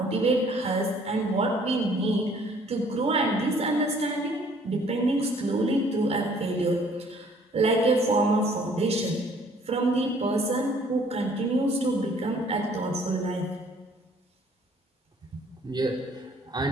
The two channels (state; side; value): normal; both; correlation 0.58